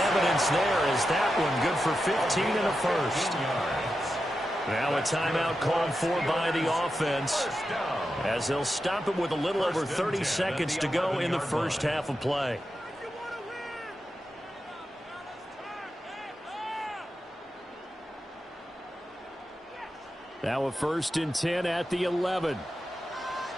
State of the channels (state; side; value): normal; both; correlation 0.89